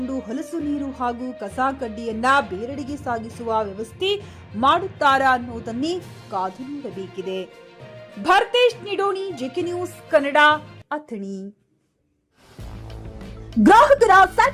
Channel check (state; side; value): identical; both; correlation 1.00